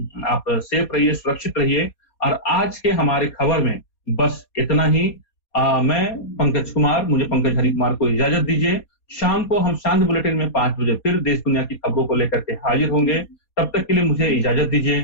आप सेफ रहिए, सुरक्षित रहिए। और आज के हमारे खबर में बस इतना ही। मैं पंकज कुमार, मुझे पंकज हरि कुमार को इजाजत दीजिए। शाम को हम शांत बुलेटिन में 5 बजे फिर देश दुनिया की खबरों को लेकर के हाजिर होंगे। तब तक के लिए मुझे इजाजत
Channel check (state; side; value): late; right; 4.2 ms